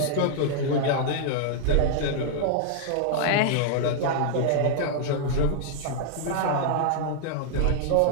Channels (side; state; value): both; different; correlation -0.01